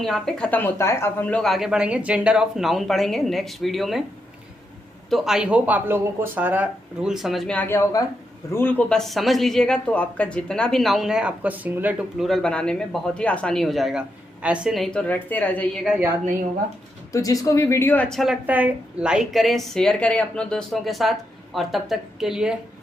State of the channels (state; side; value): normal; both; correlation 0.82